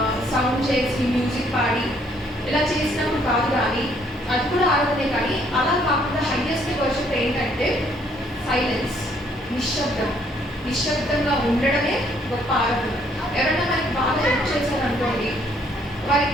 సౌండ్ చేసి మ్యూజిక్ పాడి ఇలా చేసినప్పుడు కాదు, కానీ అది కూడా ఆరాధనే. కానీ అలా కాకుండా హైయెస్ట్ వర్షిప్ ఏంటంటే సైలెన్స్, నిశ్శబ్దంగా ఉండడమే గొప్ప ఆరాధన. ఎవరైనా మనకి బాగా హెల్ప్ చేశారనుకోండి,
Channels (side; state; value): both; normal; correlation 0.66